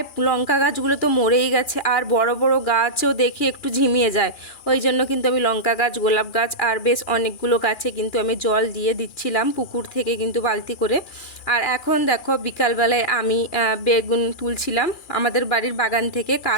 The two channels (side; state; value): right; late; 2.4 ms